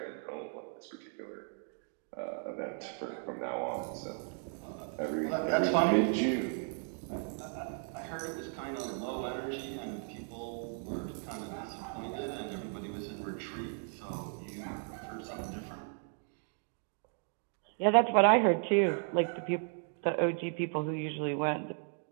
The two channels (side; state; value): left; silent; 54 dB below the other